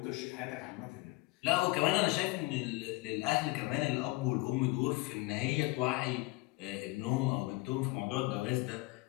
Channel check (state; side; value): quieter; right; 22.2 dB